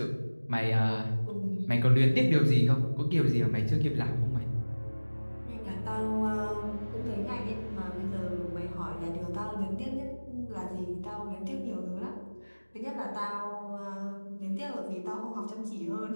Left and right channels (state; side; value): inverted; both; correlation -1.00